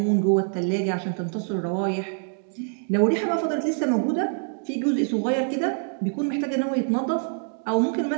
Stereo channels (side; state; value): left; silent; 57 dB below the other